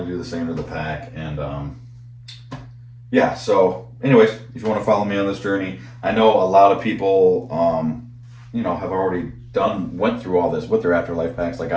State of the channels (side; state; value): both; identical; correlation 1.00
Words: do the same to the pack. And, yeah, so anyways, if you want to follow me on this journey, I know a lot of people, you know, have already went through all this with their afterlife packs like